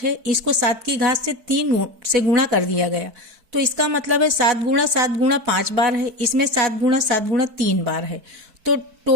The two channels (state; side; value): late; left; 4.5 ms